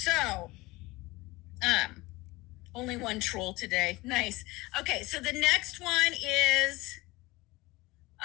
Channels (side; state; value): right; quieter; 21.4 dB